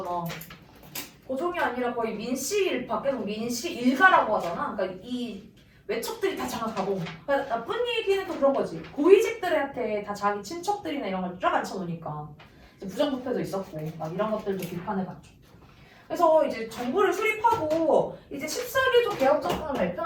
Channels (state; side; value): identical; both; correlation 1.00